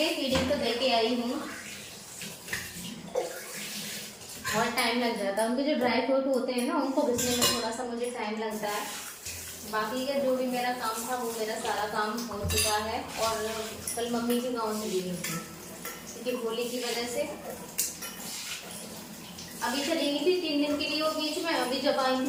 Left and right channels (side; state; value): both; identical; correlation 1.00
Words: फीडिंग तो दे के आई हूँ। बहुत टाइम लग जाता है, उनके जो ड्राई फ्रूट होते हैं ना उनको घिसने में थोड़ा सा मुझे टाइम लगता है। बाकी का जो भी मेरा काम था वो मेरा सारा काम हो चुका है। और कल मम्मी के गाँव चली गई थी क्योंकि होली की वजह से। अभी चली गई थी 3 दिन के लिए वो बीच में, अभी जब आई थी